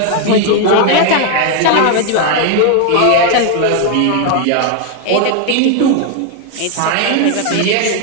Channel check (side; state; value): both; different; correlation 0.01